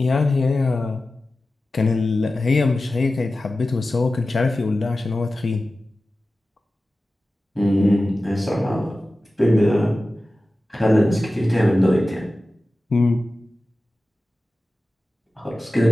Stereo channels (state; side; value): normal; both; correlation 0.95